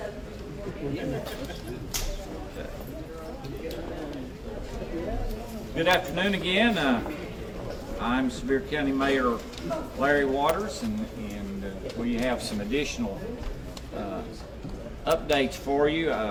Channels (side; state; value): both; identical; correlation 1.00